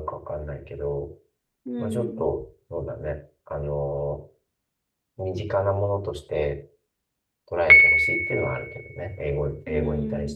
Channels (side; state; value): both; identical; correlation 1.00